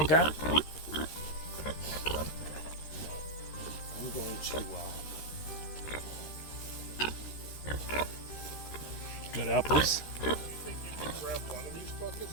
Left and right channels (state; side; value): late; right; 13 ms